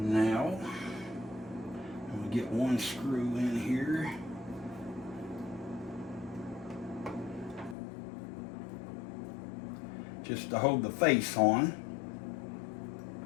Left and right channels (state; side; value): drops out; right; at 7.8 s